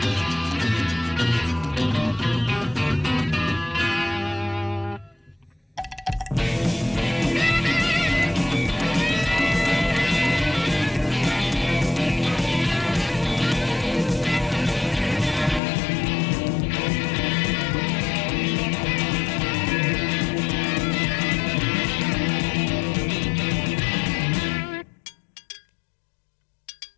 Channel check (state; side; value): drops out; right; at 15.6 s